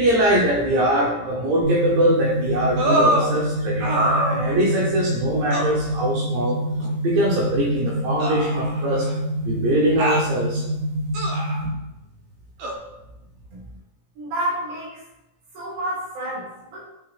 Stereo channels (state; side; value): late; left; 17 ms